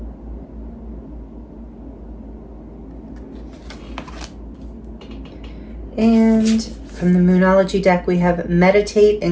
And from the Moonology deck, we have meditate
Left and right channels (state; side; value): identical; both; correlation 1.00